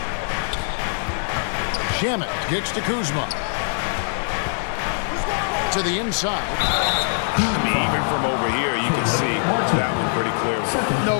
Shamet kicks to Kuzma. To the inside. I mean, even from over here, you can see that one pretty clear. clearly. No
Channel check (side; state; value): right; silent; 64 dB below the other